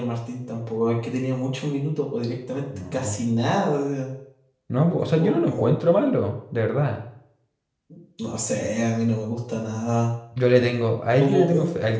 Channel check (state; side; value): identical; both; correlation 1.00